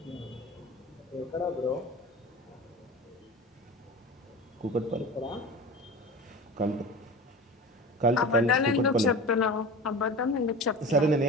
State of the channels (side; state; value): both; normal; correlation 0.33